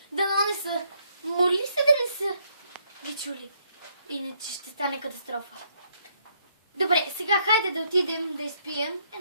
са. Моли се да не са ги чули. Иначе ще стане катастрофа. Добре, сега хайде да отидем да изпием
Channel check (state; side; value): inverted; both; correlation -0.72